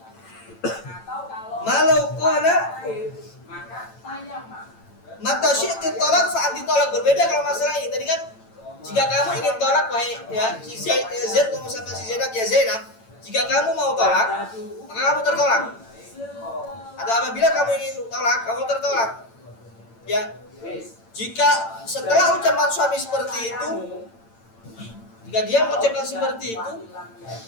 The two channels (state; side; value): late; right; 8.9 ms